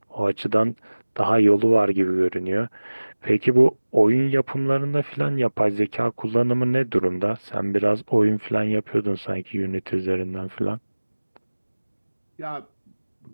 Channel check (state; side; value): inverted; both; correlation -1.00